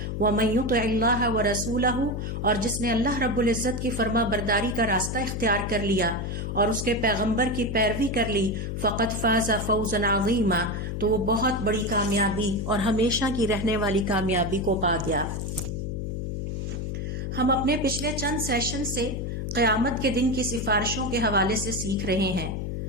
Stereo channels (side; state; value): left; noise; hum, 3 dB below the sound